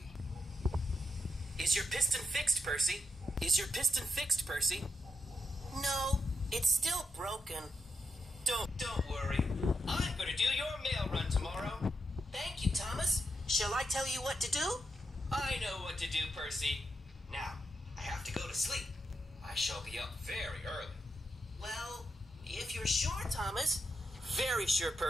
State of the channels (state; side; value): normal; both; correlation 0.84